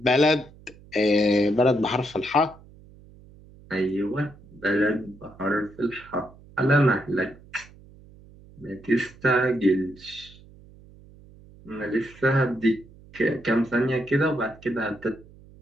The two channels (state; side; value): noise; right; hum, 23 dB below the sound